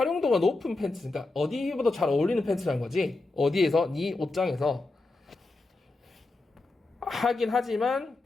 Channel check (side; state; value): right; quieter; 3.2 dB